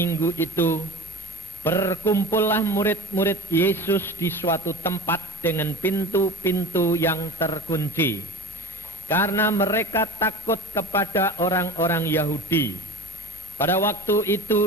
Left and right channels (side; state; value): both; normal; correlation 0.35